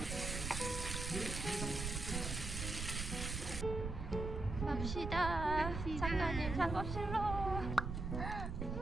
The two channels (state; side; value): noise; right; rumble, 4 dB below the sound